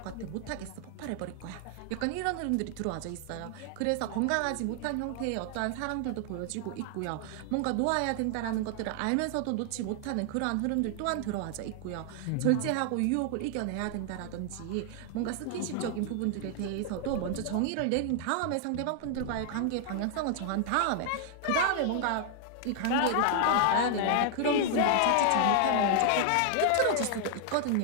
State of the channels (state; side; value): different; both; correlation 0.00